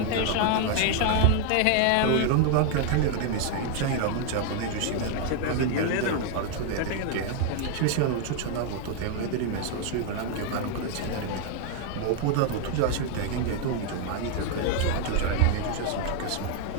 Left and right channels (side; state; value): both; different; correlation 0.00